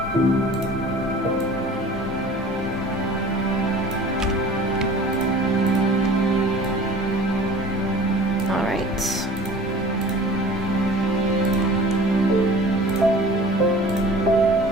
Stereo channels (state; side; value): normal; both; correlation 0.44